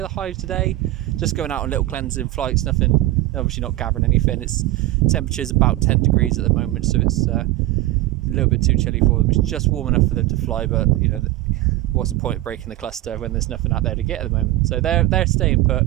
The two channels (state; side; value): quieter; left; 16.6 dB